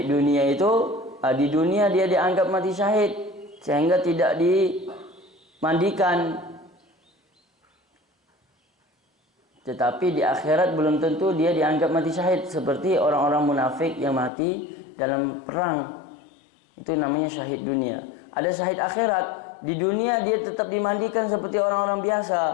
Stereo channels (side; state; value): right; drops out; at 14.3 s